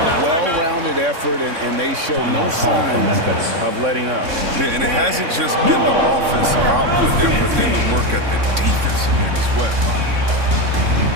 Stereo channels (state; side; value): late; left; 3.6 ms